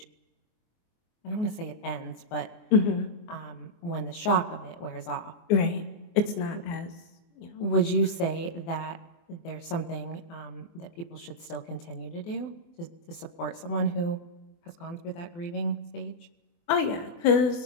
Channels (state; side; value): late; right; 24 ms